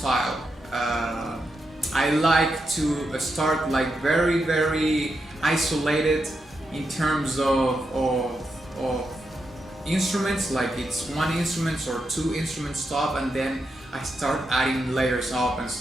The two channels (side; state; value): both; normal; correlation 0.85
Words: I like to start like very, very isolated in terms of instruments, like it's one instrument or two instruments top, and then I start adding layers up and